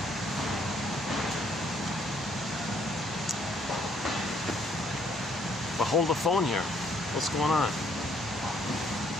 But hold the phone here. What's going on?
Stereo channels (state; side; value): normal; both; correlation 0.67